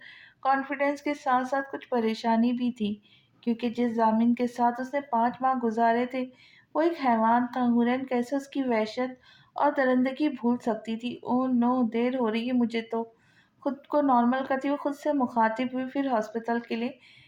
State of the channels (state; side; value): identical; both; correlation 1.00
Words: कॉन्फिडेंस के साथ साथ कुछ परेशानी भी थी, क्योंकि जिस जामिन के साथ उसने 5 माह गुजारे थे वो एक हैवान था। हुरैन कैसे उसकी वहशत और दरिंदगी भूल सकती थी? ओह नो, देर हो रही है मुझे तो। खुद को नॉर्मल करती हुई खुद से मुखातिब हुई, फिर हॉस्पिटल के लिए